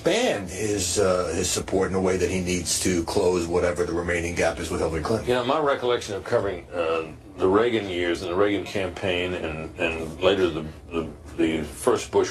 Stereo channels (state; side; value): identical; both; correlation 1.00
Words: his support in a way that he needs to close whatever the remaining gap is with Hillary Clinton. My recollection of covering the Reagan years and the Reagan campaign and later the first